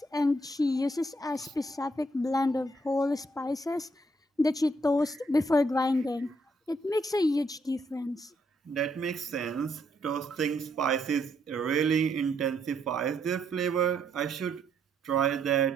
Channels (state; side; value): normal; both; correlation 0.73